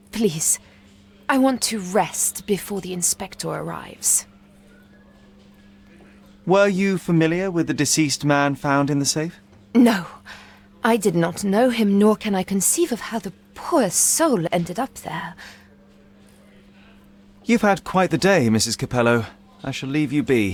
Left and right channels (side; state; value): both; identical; correlation 1.00